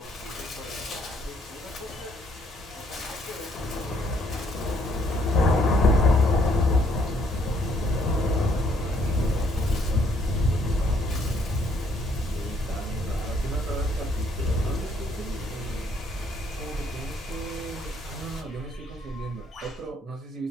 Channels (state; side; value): normal; both; correlation 0.67